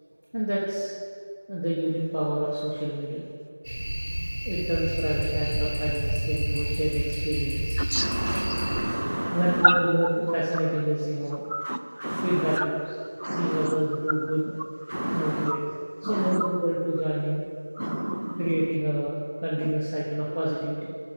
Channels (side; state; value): both; inverted; correlation -1.00